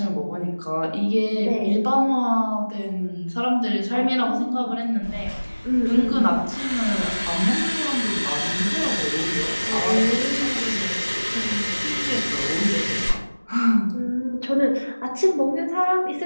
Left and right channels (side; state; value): both; inverted; correlation -1.00